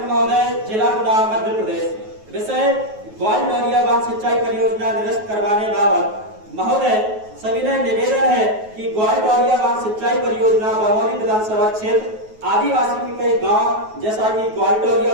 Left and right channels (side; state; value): left; late; 9.3 ms